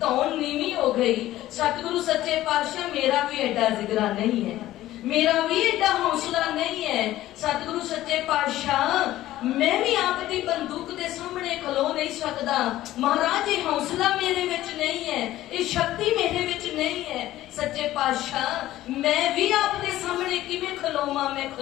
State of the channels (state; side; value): quieter; right; 14.8 dB